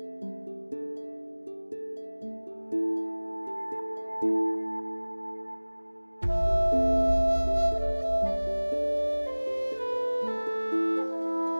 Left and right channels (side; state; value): both; inverted; correlation -1.00